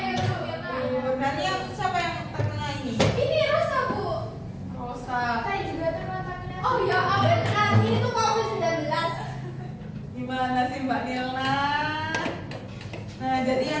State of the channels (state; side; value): identical; both; correlation 1.00